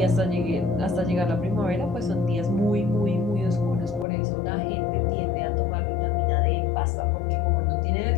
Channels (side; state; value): right; drops out; at 4.0 s